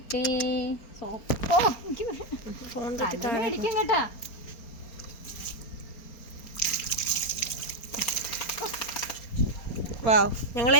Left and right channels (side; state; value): right; late; 4.3 ms